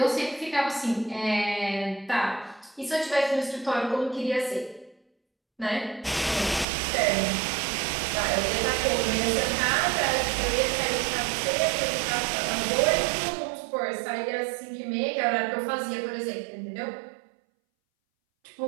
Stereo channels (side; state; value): left; drops out; at 6.7 s